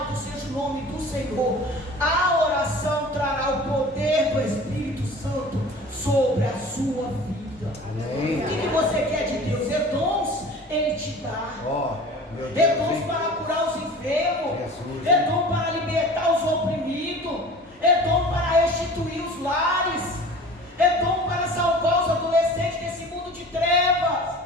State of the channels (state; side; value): normal; both; correlation 0.41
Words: seja o nome do Senhor. A oração trará o poder do Espírito Santo sobre a sua vida. Amém. O que você quer de Deus? É dons, Ele te dá. É dons para curar os enfermos, é dom para libertar os oprimidos, é dom para restituir os lares, é dom para salvar os adolescentes desse mundo de trevas.